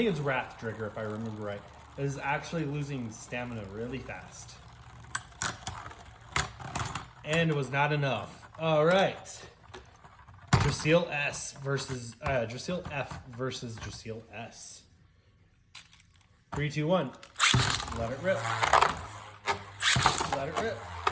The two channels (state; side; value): identical; both; correlation 1.00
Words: it's Wrath Drigger if I remember right, is actually losing stamina really fast. And it was not enough. All right. Draciel S versus Draciel F versus Draciel S. 3, 2, 1. Let it rip. Let it rip.